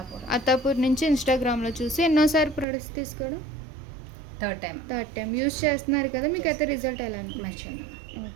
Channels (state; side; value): drops out; left; at 2.7 s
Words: అత్తాపూర్ నుంచి ఇన్స్టాగ్రామ్లో చూసి ఎన్నోసారి ప్రొడక్ట్స్ తీసుకోవడం థర్డ్ టైం యూస్ చేస్తున్నారు కదా, మీకు అయితే రిజల్ట్ ఎలా అనిపించింది?